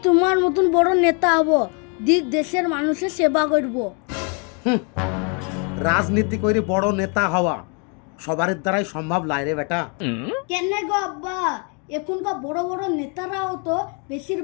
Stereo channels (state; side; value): quieter; right; 36.6 dB